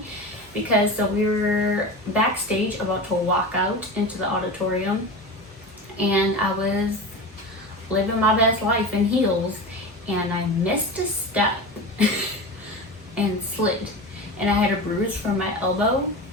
because so we were backstage about to walk out into the auditorium, and I was living my best life in heels, and I missed a step and slid, and I had a bruise from my elbow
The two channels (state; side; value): normal; both; correlation 0.28